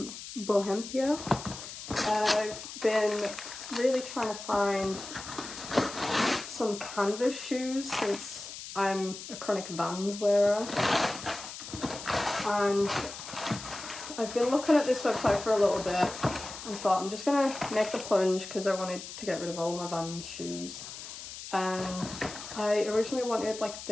Bohempia. I've been really trying to find some canvas shoes since I'm a chronic Vans wearer. And I've been looking at this website for a little bit and thought I'm just gonna make the plunge because I wanted to get rid of all my Vans shoes. And I originally wanted like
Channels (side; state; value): left; noise; hiss, 11 dB below the sound